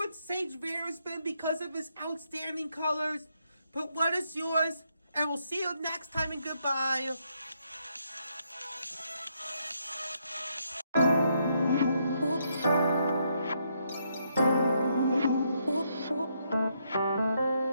Sage Vanderspin because of his outstanding colors. But what is yours? And we'll see you next time, and goodbye.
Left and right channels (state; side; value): inverted; both; correlation -0.76